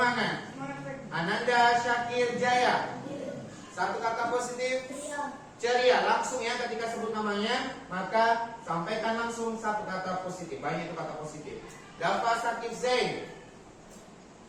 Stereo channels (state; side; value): identical; both; correlation 1.00